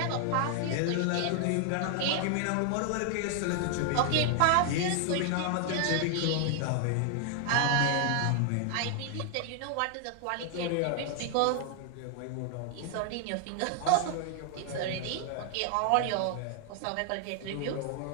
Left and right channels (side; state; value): both; different; correlation 0.00